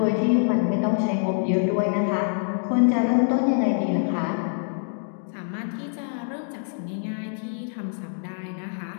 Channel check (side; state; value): right; silent; 61 dB below the other